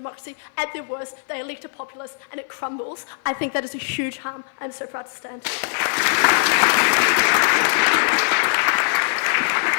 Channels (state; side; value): silent; right; 56 dB below the other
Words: at their worst, they elect a populace and it crumbles, I think that is a huge harm. I'm so proud to stand.